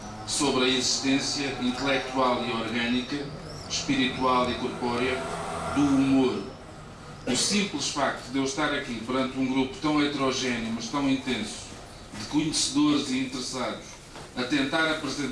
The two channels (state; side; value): identical; both; correlation 1.00